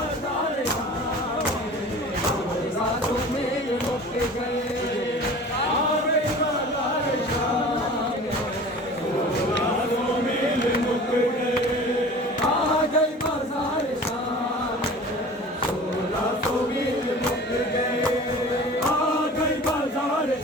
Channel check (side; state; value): both; normal; correlation 0.41